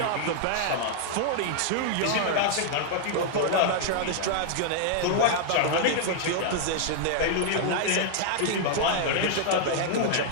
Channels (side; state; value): both; different; correlation -0.01